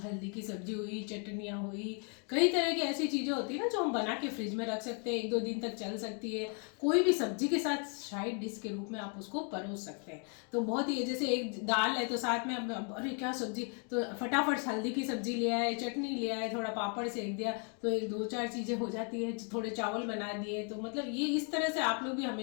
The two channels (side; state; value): right; quieter; 39.5 dB